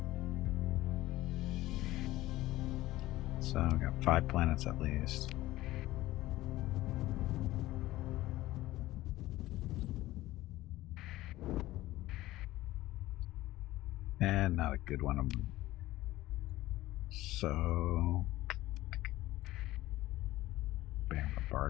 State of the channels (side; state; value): right; quieter; 16.8 dB